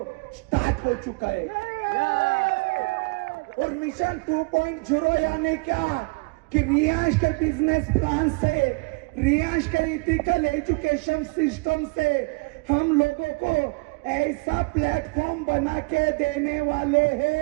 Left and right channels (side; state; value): left; quieter; 28.6 dB